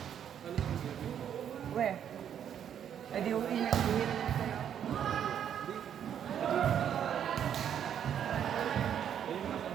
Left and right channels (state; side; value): quieter; left; 9.2 dB